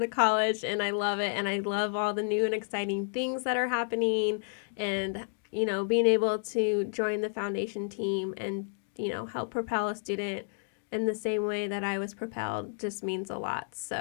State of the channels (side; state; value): right; silent; digital silence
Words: college, and I love it, and I love all the new and exciting things that are happening, and being able to join the foundation team and help propel a student in the same way that I was propelled just means a lot.